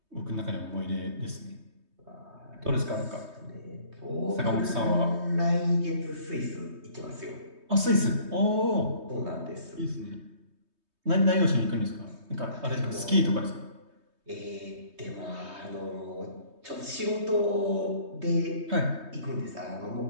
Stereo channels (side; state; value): left; late; 3.2 ms